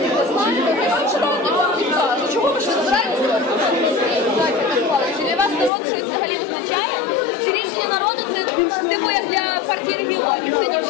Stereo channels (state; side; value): drops out; right; at 5.7 s